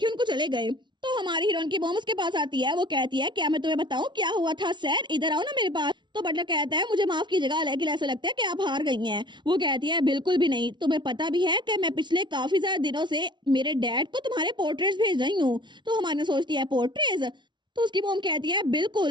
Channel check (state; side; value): late; left; 0.23 ms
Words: उनको चले गए। तो हमारी हीरोइन की मॉम उसके पास आती है, वो कहती है क्या मैं तुम्हें बताऊं क्या हुआ था सर, इधर आओ ना मेरे पास। तो बटलर कहता है मुझे माफ कीजिएगा लेकिन ऐसा लगता है कि आप हार गई हैं। वो कहती है बिल्कुल भी नहीं, तुम्हें पता भी है कि मैं पिछले काफी ज्यादा दिनों से मेरे डैड को तुम्हारे पोर्ट्रेट्स भेज रही हूँ। तो हमारी सोचती है पोर्ट्रेट्स। तो उसकी मॉम कहती है